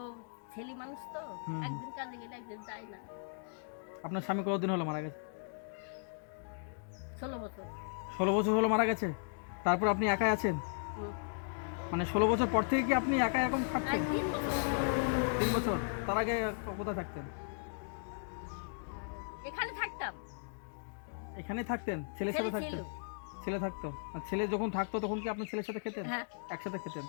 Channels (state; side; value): silent; right; digital silence